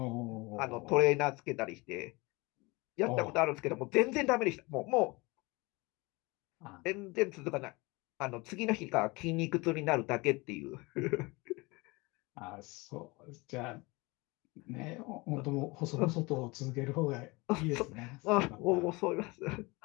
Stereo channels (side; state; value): right; quieter; 24.9 dB